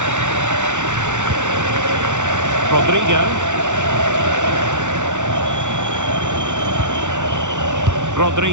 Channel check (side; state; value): left; late; 0.85 ms